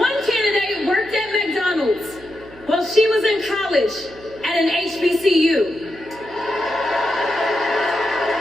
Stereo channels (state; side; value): noise; right; hum, 21 dB below the sound